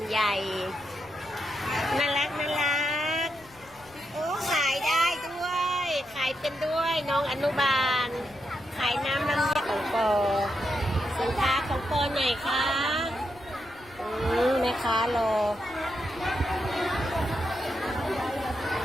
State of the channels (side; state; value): left; noise; rumble, 25 dB below the sound